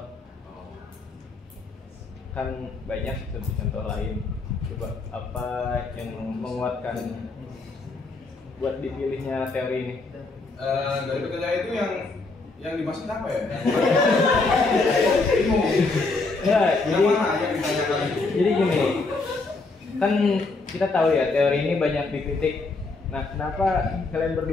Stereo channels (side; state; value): right; quieter; 3.6 dB